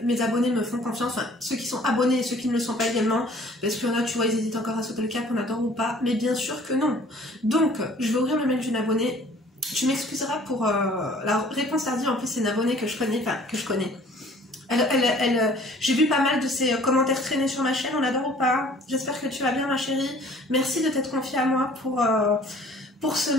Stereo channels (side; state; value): both; normal; correlation 0.53